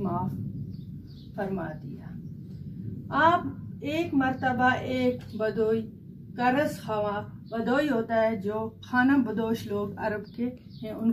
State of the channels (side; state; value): both; identical; correlation 1.00